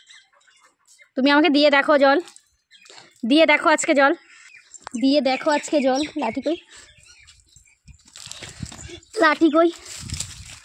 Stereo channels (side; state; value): both; identical; correlation 1.00